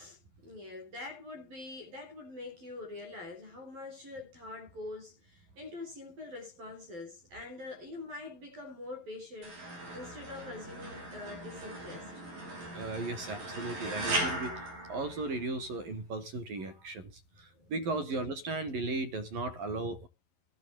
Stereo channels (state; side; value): late; left; 11 ms